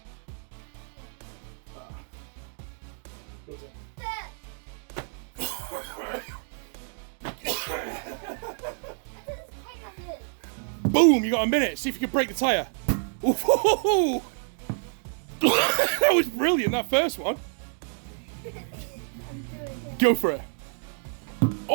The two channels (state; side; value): silent; left; 59 dB below the other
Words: Does it? Boom! You got a minute. See if you can break the tyre. Ooh. That was brilliant. That first one. Go for it.